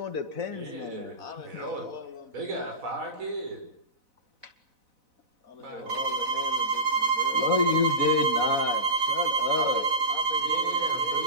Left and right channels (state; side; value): late; left; 4.0 ms